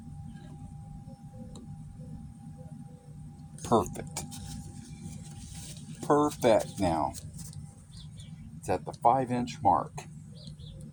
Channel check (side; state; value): both; identical; correlation 1.00